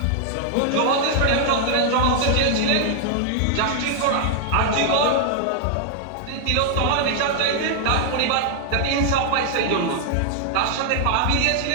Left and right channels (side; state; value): both; different; correlation 0.00